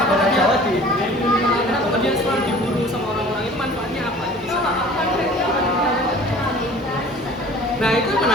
kenapa dia selalu diburu sama orang-orang itu manfaatnya apa? Nah itu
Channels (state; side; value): normal; both; correlation 0.46